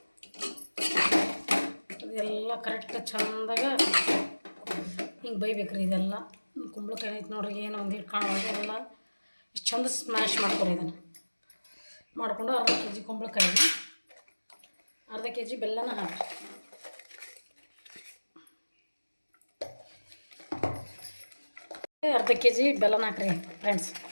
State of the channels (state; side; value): inverted; both; correlation -1.00